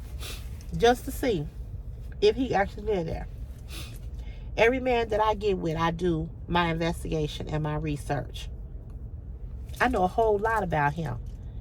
just to see if he actually lived there. Every man that I get with, I do my investigation and my research. I know a whole lot about him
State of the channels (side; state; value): both; identical; correlation 1.00